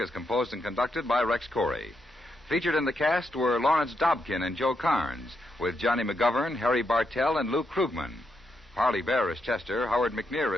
composed and conducted by Rex Corey. Featured in the cast were Lawrence Dobkin and Joe Carnes, with Johnny McGovern, Harry Bartell, and Lou Krugman. Parley Bear is Chester, Howard McNear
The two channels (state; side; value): normal; both; correlation 0.81